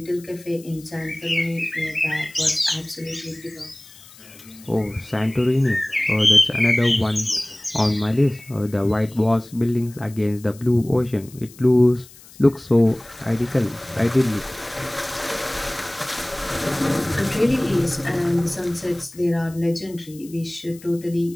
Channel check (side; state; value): left; noise; hiss, 22 dB below the sound